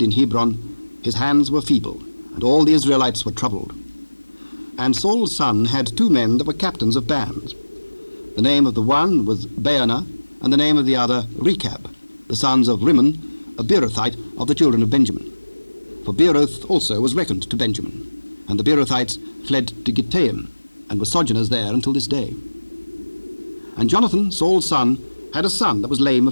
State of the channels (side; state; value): both; inverted; correlation -1.00